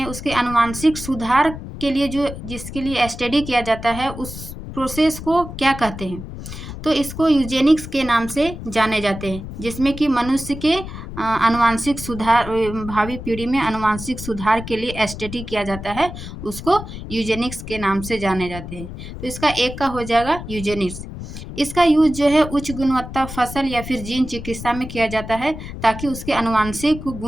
उसके आनुवांशिक सुधार के लिए जिसके लिए स्टडी किया जाता है, उस प्रोसेस को क्या कहते हैं? तो इसको यूजेनिक्स के नाम से जाने जाते हैं, जिसमें कि मनुष्य के आनुवांशिक सुधार, भावी पीढ़ी में आनुवांशिक सुधार के लिए स्टडी किया जाता है, उसको यूजेनिक्स के नाम से जाने जाते हैं। तो इसका एक का हो जाएगा यूजेनिक्स। इसका यूज जो है उच्च गुणवत्ता फसल या फिर जीन चिकित्सा में किया जाता है ताकि उसके आनुवांशिक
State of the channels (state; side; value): noise; left; rumble, 10 dB below the sound